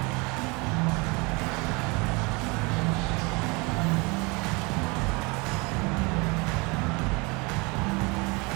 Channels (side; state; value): left; quieter; 27.7 dB